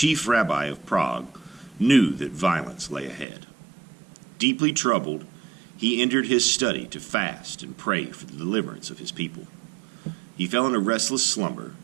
rabbi of Prague, knew that violence lay ahead. Deeply troubled, he entered his study to fast and pray for the deliverance of his people. He fell in a restless slumber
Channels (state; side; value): drops out; left; at 3.2 s